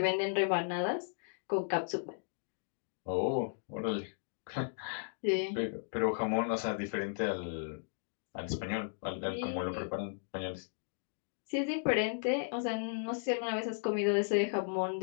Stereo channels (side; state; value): right; silent; digital silence